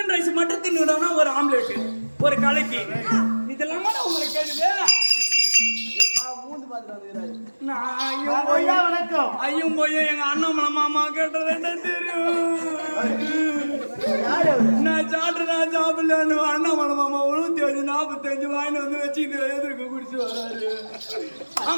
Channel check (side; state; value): both; inverted; correlation -1.00